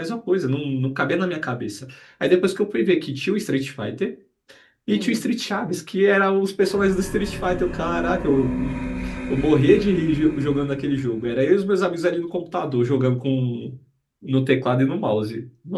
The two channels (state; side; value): identical; both; correlation 1.00